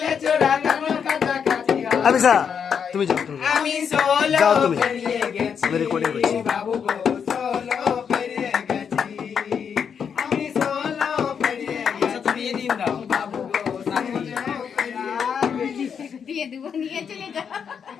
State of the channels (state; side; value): quieter; right; 7.1 dB